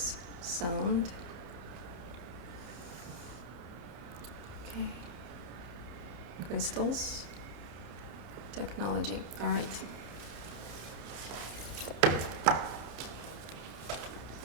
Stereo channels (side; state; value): left; late; 33 ms